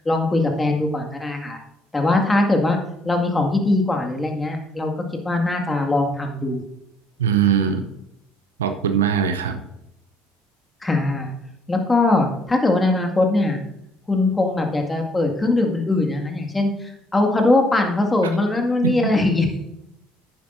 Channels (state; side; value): normal; both; correlation 0.66